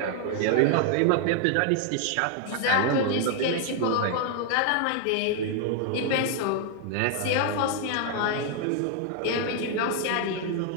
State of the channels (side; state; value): both; different; correlation 0.00